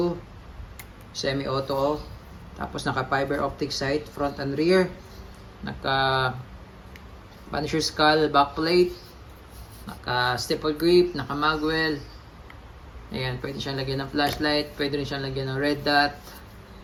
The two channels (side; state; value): both; identical; correlation 1.00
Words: semi auto, tapos naka fiber optic sight front and rear, naka Punisher skull backplate, naka staple grip, naka magwell. Ayan, pwede siyang lagyan ng flashlight, pwede rin siyang lagyan ng red dot.